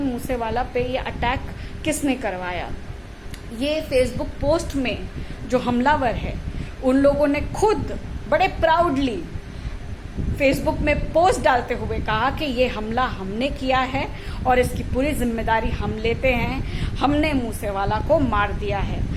मूसेवाला पे ये अटैक किसने करवाया। ये फेसबुक पोस्ट में जो हमलावर है, उन लोगों ने खुद बड़े प्राउडली फेसबुक में पोस्ट डालते हुए कहा कि ये हमला हमने किया है और इसकी पूरी जिम्मेदारी हम लेते हैं, हमने मूसेवाला को मार दिया है।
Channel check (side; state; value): both; identical; correlation 1.00